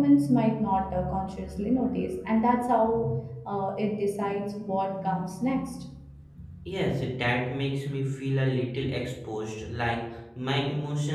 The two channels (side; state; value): both; identical; correlation 1.00